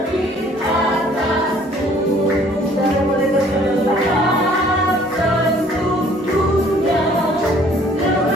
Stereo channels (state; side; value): normal; both; correlation 0.57